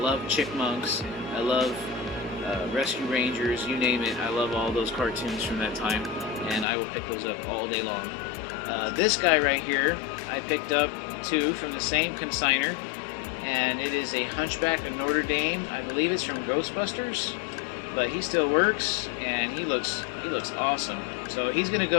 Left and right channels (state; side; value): drops out; right; at 6.7 s